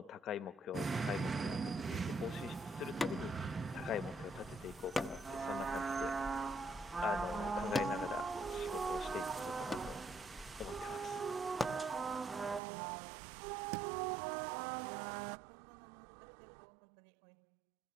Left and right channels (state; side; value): drops out; left; at 12.6 s